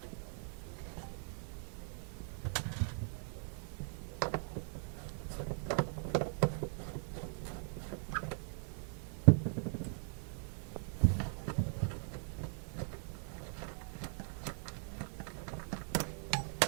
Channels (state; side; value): silent; left; 51 dB below the other